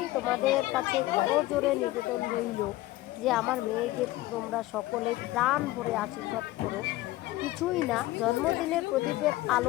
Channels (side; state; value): right; quieter; 17.6 dB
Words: তোমাদের কাছে জোরে নিবেদন রইল যে আমার মেয়েকে তোমরা সকলে প্রাণ ভরে আশীর্বাদ করো। কিছুই না, জন্মদিনের প্রদীপের